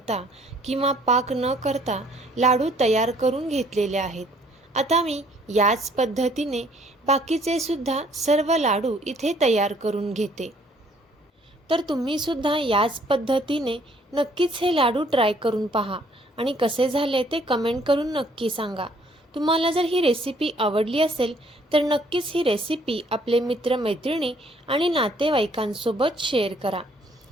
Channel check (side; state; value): both; normal; correlation 0.62